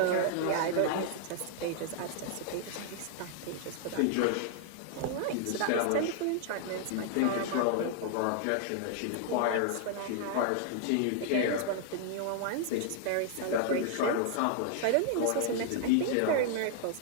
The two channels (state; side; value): different; both; correlation -0.01